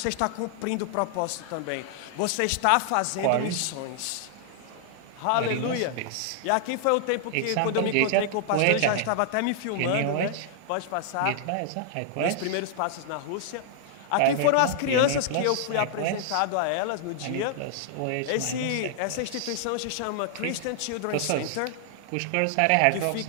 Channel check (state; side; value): different; both; correlation -0.01